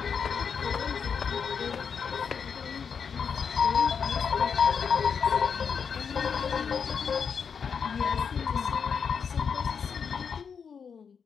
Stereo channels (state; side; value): quieter; right; 6.5 dB